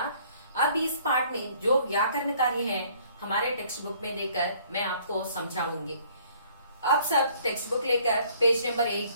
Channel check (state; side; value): inverted; both; correlation -0.59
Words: अब इस पाठ में जो व्याकरण कार्य है हमारे टेक्स्ट बुक में देकर मैं आपको समझाऊंगी। आप सब टेक्स्ट बुक लेकर पेज नंबर